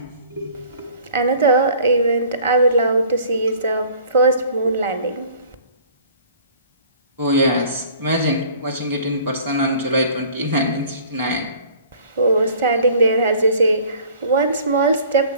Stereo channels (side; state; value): both; inverted; correlation -0.50